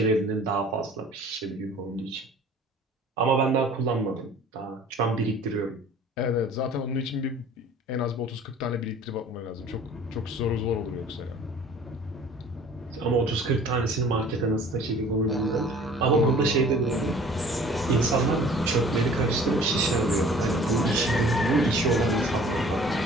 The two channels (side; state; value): both; normal; correlation 0.49